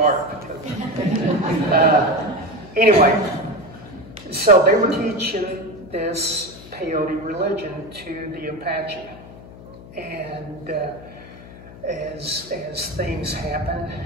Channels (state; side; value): noise; left; hum, 17 dB below the sound